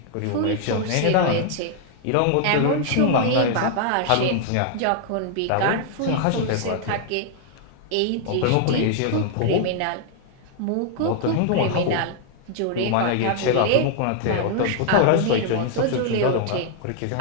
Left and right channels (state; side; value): different; both; correlation 0.00